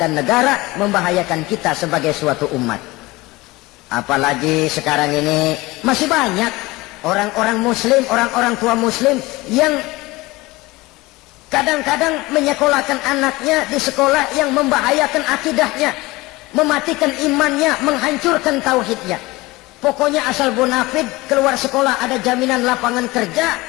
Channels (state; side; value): quieter; right; 21.2 dB